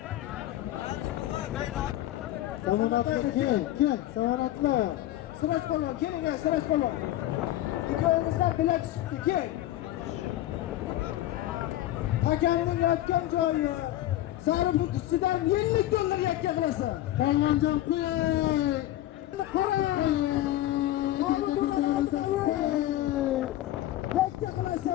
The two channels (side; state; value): right; quieter; 14.4 dB